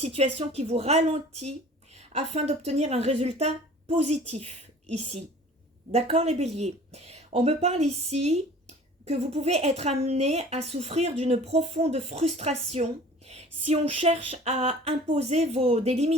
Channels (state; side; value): normal; both; correlation 0.46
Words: qui vous ralentit afin d'obtenir un résultat positif ici. D'accord les béliers? On me parle ici que vous pouvez être amené à souffrir d'une profonde frustration si on cherche à imposer des